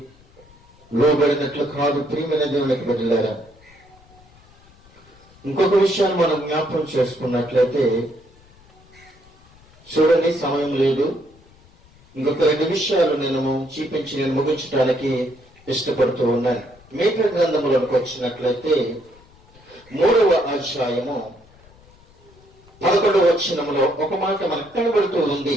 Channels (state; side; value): noise; left; rumble, 27 dB below the sound